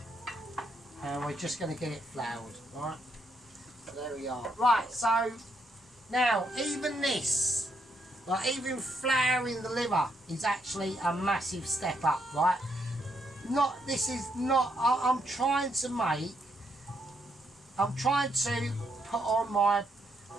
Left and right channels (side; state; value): both; normal; correlation 0.76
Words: and we're just going to get it floured, right? So there we are. Right, so now even this, like even flouring the liver is actually a massive step up, right? I'm trying to put on